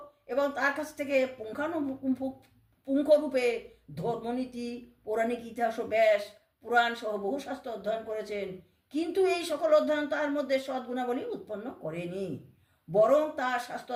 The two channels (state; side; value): identical; both; correlation 1.00